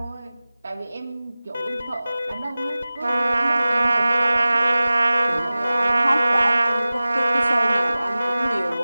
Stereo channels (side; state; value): both; inverted; correlation -0.98